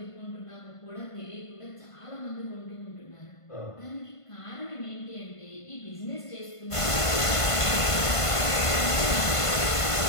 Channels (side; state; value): right; late; 1.5 ms